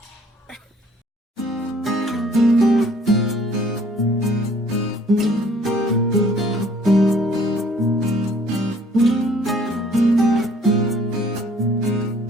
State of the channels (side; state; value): both; normal; correlation 0.58